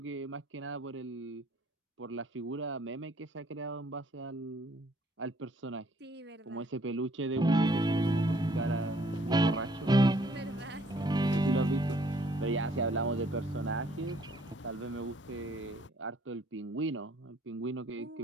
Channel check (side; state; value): both; normal; correlation 0.62